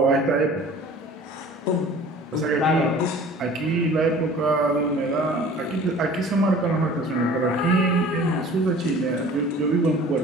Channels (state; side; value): normal; both; correlation 0.45